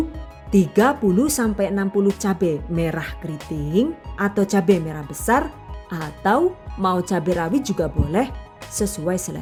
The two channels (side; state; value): both; identical; correlation 1.00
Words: 30-60 cabai merah keriting atau cabai merah besar, atau mau cabai rawit juga boleh sesuai